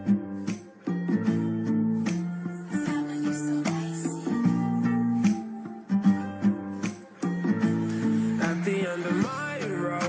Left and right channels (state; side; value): identical; both; correlation 1.00